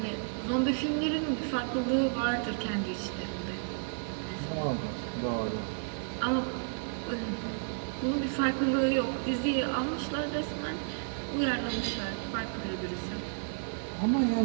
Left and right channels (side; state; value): left; silent; digital silence